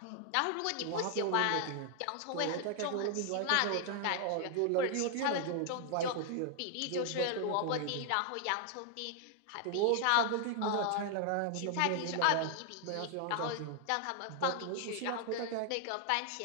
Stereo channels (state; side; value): different; both; correlation 0.00